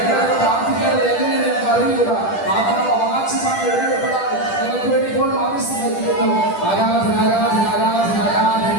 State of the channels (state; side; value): late; right; 10 ms